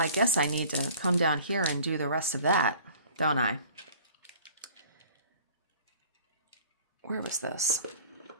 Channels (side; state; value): both; inverted; correlation -0.48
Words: guess I need to come down here and do the rest of that, don't I? Where was this?